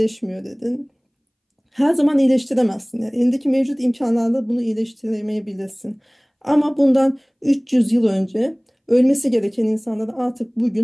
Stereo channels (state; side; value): identical; both; correlation 1.00